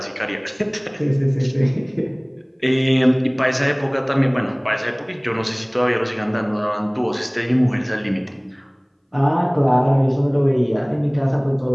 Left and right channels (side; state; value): both; identical; correlation 1.00